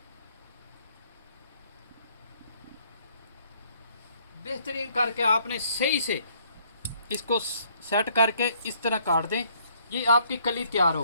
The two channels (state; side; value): inverted; both; correlation -0.64